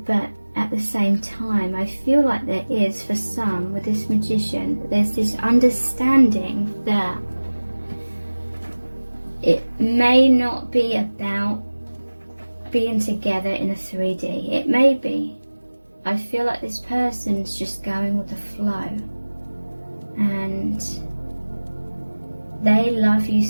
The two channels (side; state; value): both; inverted; correlation -1.00